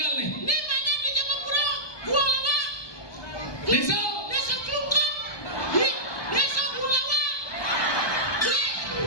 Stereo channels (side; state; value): right; late; 1.2 ms